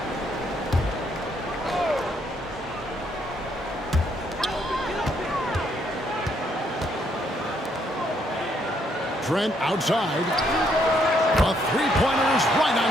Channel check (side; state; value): both; normal; correlation 0.72